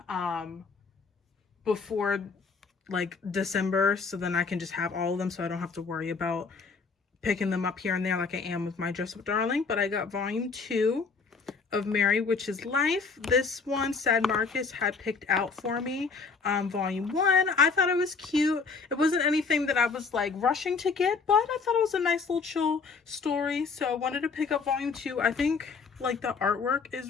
before like December, so then I can just have all of them, so I don't have to worry about picking them up here and there like I am with my Dress Up Darling. But I got volume 2 of Mary, Which Is Life. This one, Sad Marcus had picked out for me. Volume 1, I thought it was cute. It wasn't anything that I was like rushing to get, but I thought it was a nice little chill story, so I wanted to pick up volume 2. I think like the artwork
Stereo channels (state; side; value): quieter; right; 4.8 dB